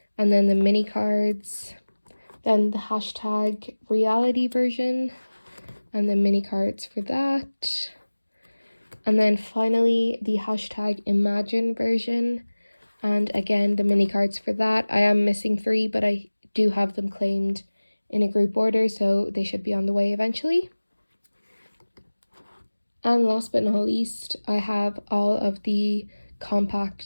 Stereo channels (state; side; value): inverted; both; correlation -1.00